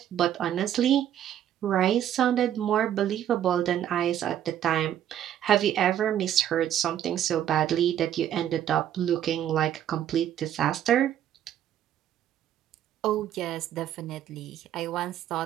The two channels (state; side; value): quieter; left; 10.9 dB